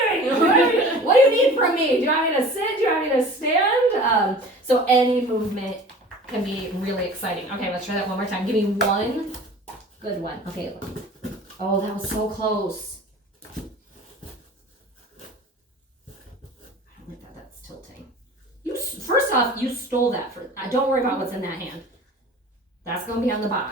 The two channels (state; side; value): normal; both; correlation 0.42